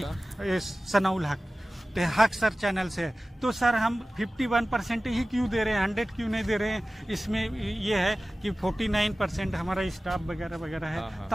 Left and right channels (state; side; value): normal; both; correlation 0.97